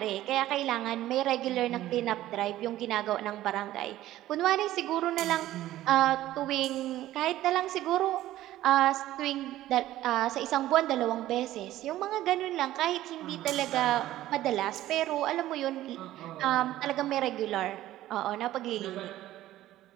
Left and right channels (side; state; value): left; quieter; 14.5 dB